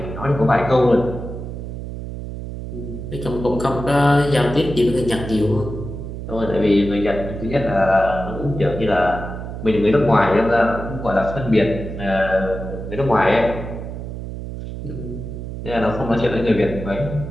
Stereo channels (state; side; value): noise; right; hum, 8 dB below the sound